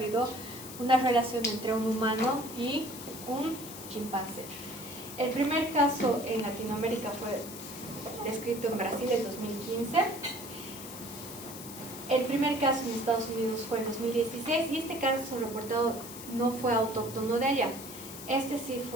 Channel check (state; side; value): noise; left; hiss, 12 dB below the sound